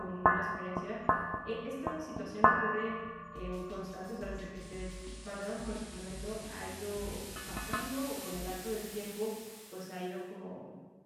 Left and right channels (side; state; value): both; identical; correlation 1.00